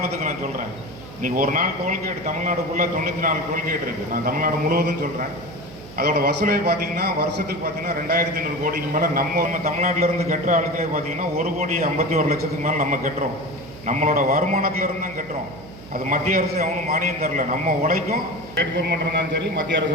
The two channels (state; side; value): noise; right; hum, 17 dB below the sound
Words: நான் சொல்கிறேன். இன்றைக்கி ஒரு நாள் டோல்கேட் தமிழ்நாடுக்குள்ளே 94 டோல்கேட் இருக்குது. நான் தமிழ்நாடு முழுவதும் சொல்கிறேன். அதோட வசூலை பார்த்தீங்கன்னா வருஷத்துக்கு பார்த்தீங்கன்னா 2,500 கோடிக்கு மேலே நம்ம தமிழ்நாட்டிலேருந்து கட்டுற ஆளுக்களே பார்த்தீங்கன்னா 1,51,00,000 மேலே நம்ம கட்டுறோம். நம்மளோட வருமானத்திலேருந்து தான் கட்டுறோம். அது மத்திய அரசு அவனும் மானியம் தரல. நம்ம உழைக்கும், ஸ்டேட் கவர்மெண்ட் இருந்தாலும் சரி, மத்திய அரசு